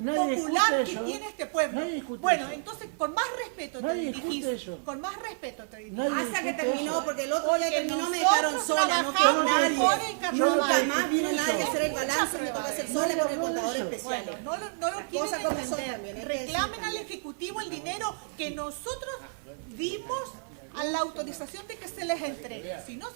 popular discute que eso. tiene este pueblo. Nadie discute Bueno, eso. entonces con más respeto te Nadie discute dirigís. eso. Con más respeto te dirigís. Nadie Hasta que discute terminó, eso. porque el otro día Porque terminó, me nosotros dejaron sola, no quedó trabajamos nadie. por el carnaval. Nunca más vino nadie a Mucha hacer el balance, me prueba tocó hacer de sola eso. con el contador especial. Bueno, no lo quieren cosas como son entender. también, hay que Reclamen decir al Ejecutivo el dinero que nosotros dimos a la autorización de que se les entregue. Si no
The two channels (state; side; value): silent; left; digital silence